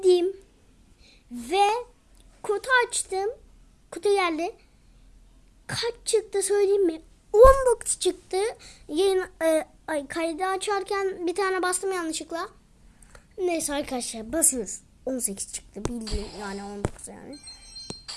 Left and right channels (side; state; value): both; identical; correlation 1.00